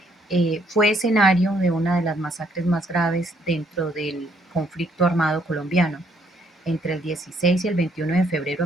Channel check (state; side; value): normal; both; correlation 0.68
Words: fue escenario de una de las masacres más graves dentro del conflicto armado colombiano. Entre el 16 y el 21 de febrero